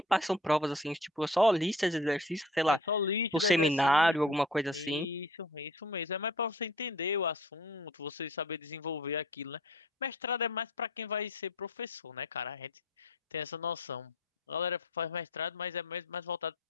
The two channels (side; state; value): both; normal; correlation 0.48